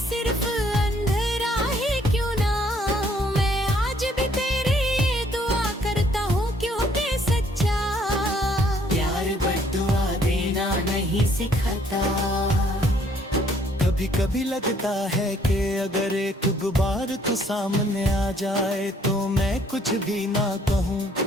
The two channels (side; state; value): both; normal; correlation 0.64